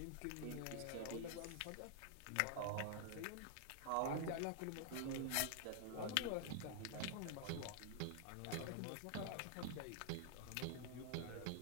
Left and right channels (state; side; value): different; both; correlation 0.00